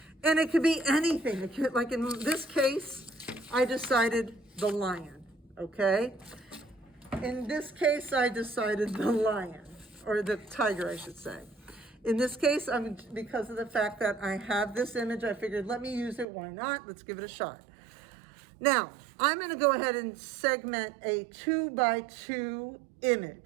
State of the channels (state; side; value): drops out; left; at 16.2 s